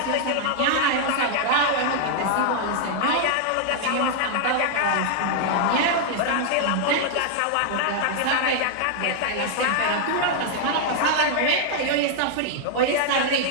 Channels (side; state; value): both; different; correlation -0.01